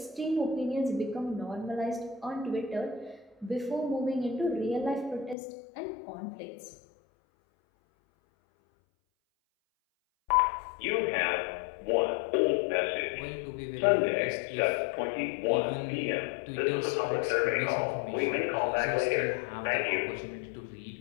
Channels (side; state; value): right; drops out; at 5.4 s